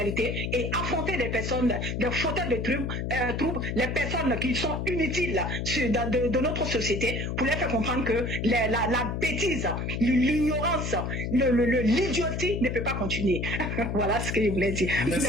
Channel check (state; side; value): noise; left; hum, 2 dB below the sound